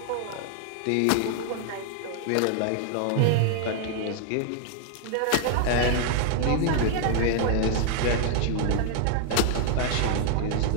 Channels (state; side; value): different; both; correlation 0.00